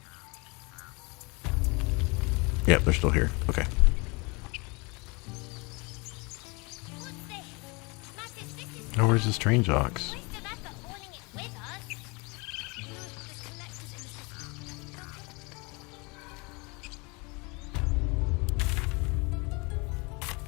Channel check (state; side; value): quieter; right; 28.6 dB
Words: Yep, they're still here. Okay. Oh, where's the strange ox?